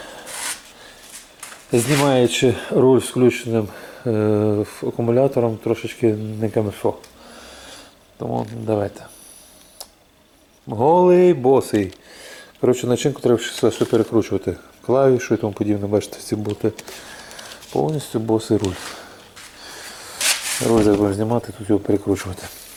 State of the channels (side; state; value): both; identical; correlation 1.00